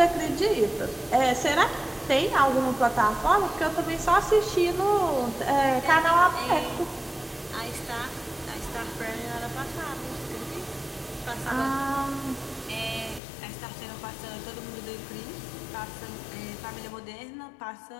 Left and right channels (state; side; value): drops out; right; at 13.2 s